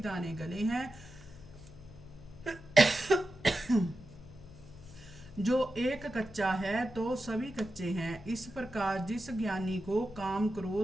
गले हैं। जो एक कच्चा है तो सभी कच्चे हैं। इस प्रकार जिस ज्ञानी को काम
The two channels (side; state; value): left; noise; hum, 20 dB below the sound